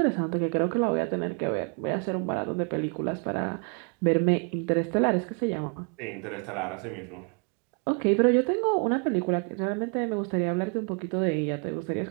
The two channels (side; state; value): left; quieter; 38.9 dB